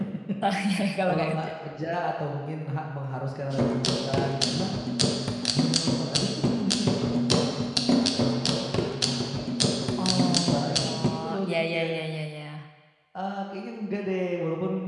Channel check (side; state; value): both; identical; correlation 1.00